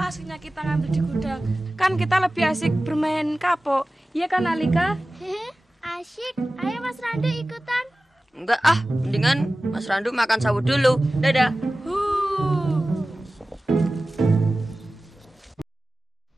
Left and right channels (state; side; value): normal; both; correlation 0.96